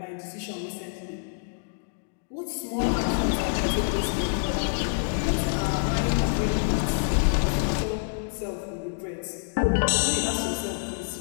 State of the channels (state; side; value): silent; right; digital silence